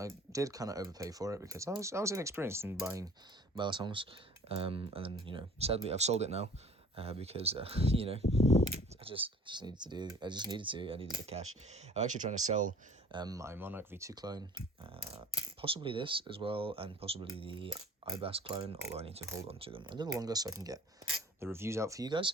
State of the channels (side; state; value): both; normal; correlation 0.49